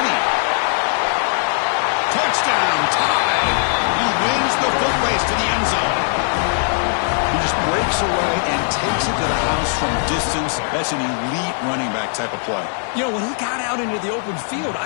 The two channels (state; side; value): silent; right; 57 dB below the other